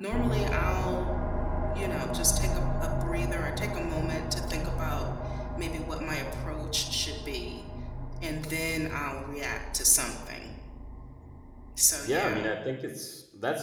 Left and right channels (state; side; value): identical; both; correlation 1.00